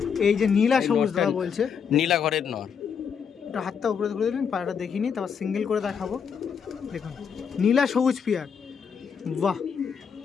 এই যে নীলা সবুজ দাদা বলছে, নীলা ঘরের নর। এটা হাতটা উপরে তুলে দিন, পায়রাটা দেখিনি, তারপর সিঙ্গেল করে দেখাবো। দেখুন নীলা সবুজ পিয়ার। বাহ,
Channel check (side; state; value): right; quieter; 6.8 dB